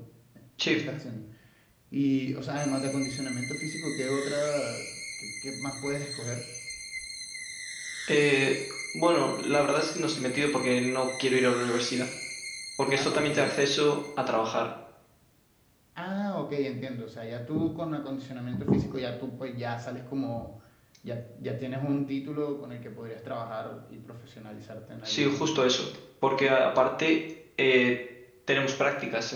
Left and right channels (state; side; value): identical; both; correlation 1.00